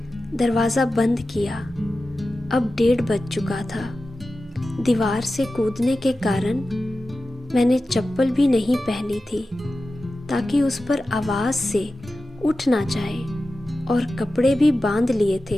दरवाज़ा बंद किया। अब 1:30 बज चुका था। दीवार से कूदने के कारण मैंने चप्पल भी नहीं पहनी थी ताकि उस पर आवाज़ से उठ ना जाए, और कपड़े भी बांध लिए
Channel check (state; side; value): normal; both; correlation 0.94